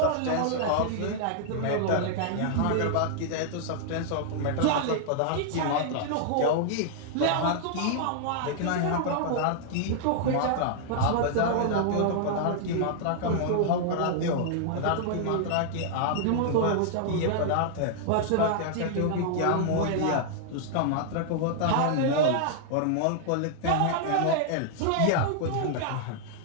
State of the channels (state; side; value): different; both; correlation -0.01